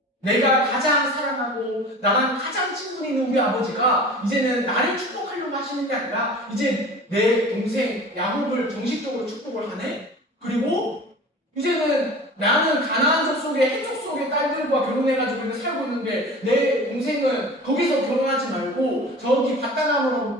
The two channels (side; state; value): both; normal; correlation 0.39